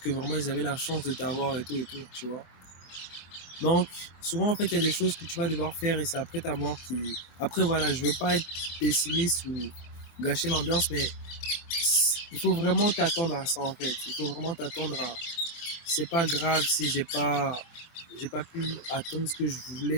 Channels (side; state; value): right; late; 23 ms